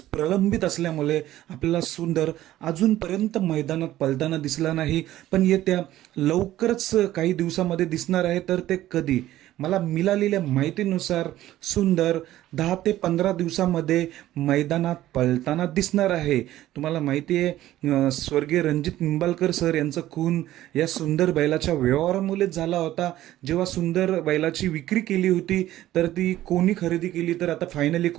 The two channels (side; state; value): left; quieter; 14.3 dB